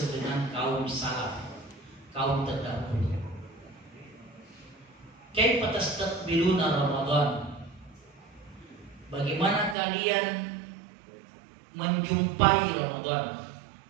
dengan kaum salaf, kaum terdahulu. Kaifa tastaqbiluna Ramadan? Bagaimana kalian menjumpai Ramadan,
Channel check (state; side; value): drops out; left; at 9.8 s